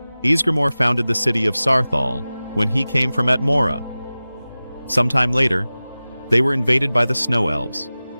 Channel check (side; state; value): both; inverted; correlation -0.97